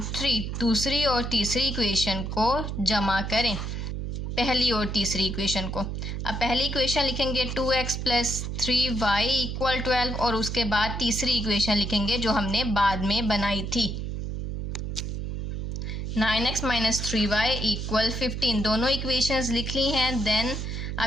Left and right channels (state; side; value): noise; right; hum, 4 dB below the sound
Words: 3, दूसरी और तीसरी इक्वेशन को जमा करें पहली और तीसरी इक्वेशन को। अब पहली इक्वेशन लिखेंगे 2x + 3y इक्वल 12 और उसके बाद तीसरी इक्वेशन लिखेंगे जो हमने बाद में बनाई थी 9x - 3y इक्वल 15। दोनों इक्वेशंस लिख ली हैं। देन